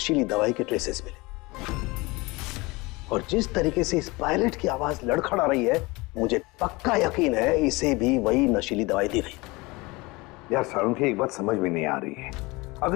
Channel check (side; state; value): right; quieter; 23.7 dB